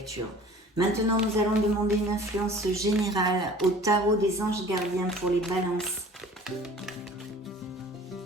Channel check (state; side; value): normal; both; correlation 0.47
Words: Maintenant, nous allons demander une influence générale au tarot des anges gardiens pour les balances.